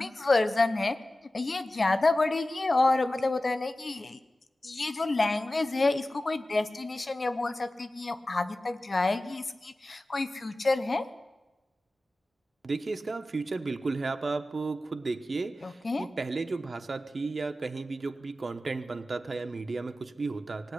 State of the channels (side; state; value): both; normal; correlation 0.95